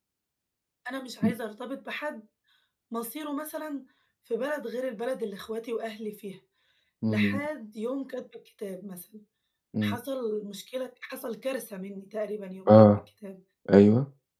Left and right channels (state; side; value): identical; both; correlation 1.00